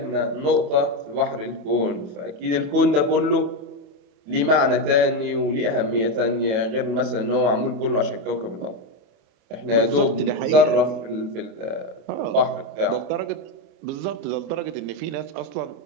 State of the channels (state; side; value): late; left; 27 ms